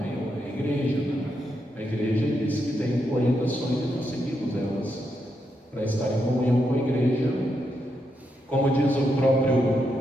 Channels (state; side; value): normal; both; correlation 0.82